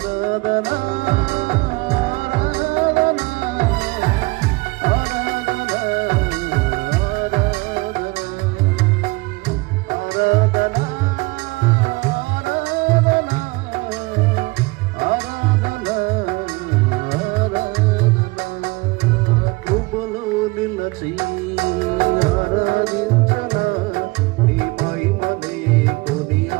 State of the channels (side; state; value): left; quieter; 24.4 dB